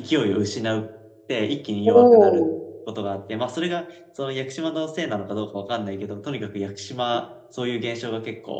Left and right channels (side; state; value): both; identical; correlation 1.00